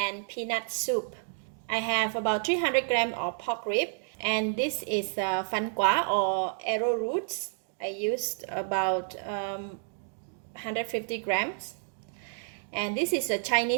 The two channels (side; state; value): left; silent; digital silence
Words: peanut soup. I have about 300 grams of pork rib, and this is fan quả or arrowroots. I used about 150 grams, and this is a